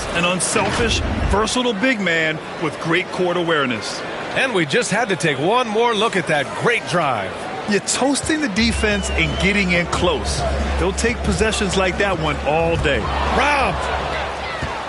an unselfish, versatile big man with great court awareness. And we just had to take one more look at that great drive. You're toasting the defense and getting in close. They'll take possessions like that one all day. Robbed.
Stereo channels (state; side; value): identical; both; correlation 1.00